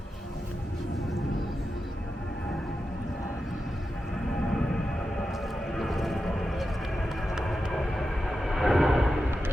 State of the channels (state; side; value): normal; both; correlation 0.90